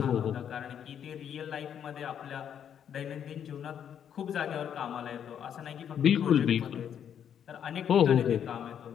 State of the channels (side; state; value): right; quieter; 8.9 dB